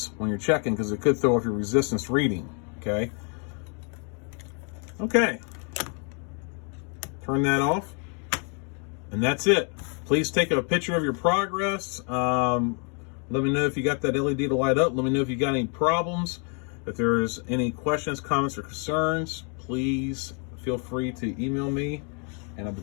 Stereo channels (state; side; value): quieter; right; 38.9 dB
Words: when you're checking, because it could throw off your resistance reading. Okay. Okay. Turn that off, and that's it. Please take a picture of your progress. Let me know if you got that LED to light up. Let me know if you got any problems. If there's any questions, comments, or concerns, please feel free to email me, and I'll be